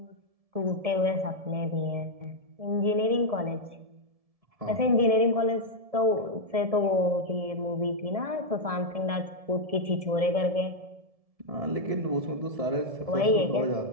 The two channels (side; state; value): left; late; 1.7 ms